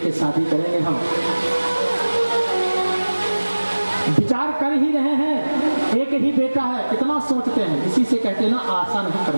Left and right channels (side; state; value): both; inverted; correlation -1.00